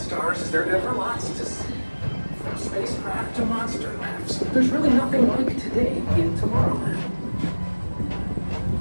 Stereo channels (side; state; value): both; inverted; correlation -1.00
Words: there are ever lots to see. From spacecraft to monster labs, there's really nothing like today in Tomorrowland.